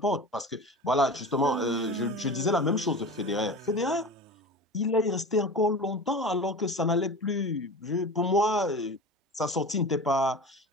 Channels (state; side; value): normal; both; correlation 0.33